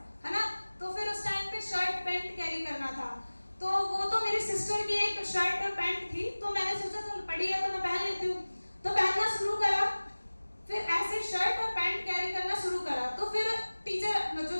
है ना। तो फिर उस टाइम पे शर्ट पैंट कैरी करना था, तो वो तो मेरी सिस्टर की एक शर्ट और पैंट थी, तो मैंने सोचा चल पड़ी है तो मैं पहन लेती हूँ, तो पहनना शुरू करा। फिर ऐसे शर्ट और पैंट कैरी करना शुरू करा। तो फिर टीचर जो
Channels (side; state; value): both; inverted; correlation -1.00